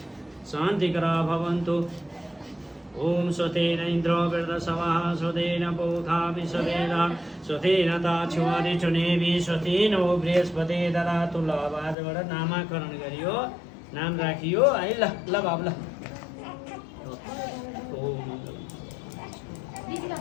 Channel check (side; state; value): right; drops out; at 12.0 s